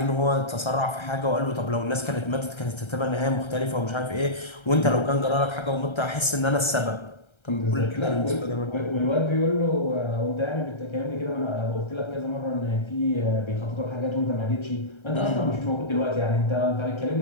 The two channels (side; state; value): right; late; 1.3 ms